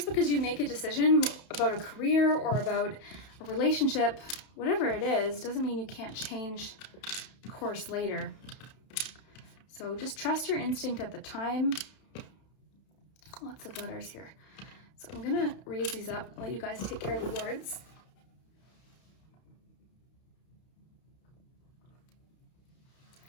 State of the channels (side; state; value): right; late; 31 ms